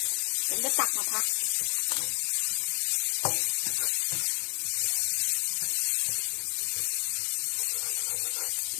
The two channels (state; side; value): silent; right; digital silence